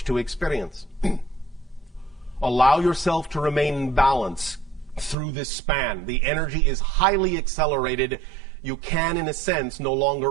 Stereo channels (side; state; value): left; drops out; at 5.2 s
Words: to experience. Allow yourself to remain in balance through this span. The energy is highly accelerated. You can, in a sense, no